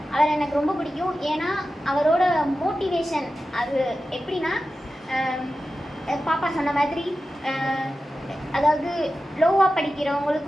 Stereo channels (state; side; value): normal; both; correlation 0.93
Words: அவர் எனக்கு ரொம்ப பிடிக்கும். ஏன்னா அவரோட மோட்டிவேஷன் அது எப்படின்னா, பாப்பா சொன்ன மாதிரி அதாவது லோவாக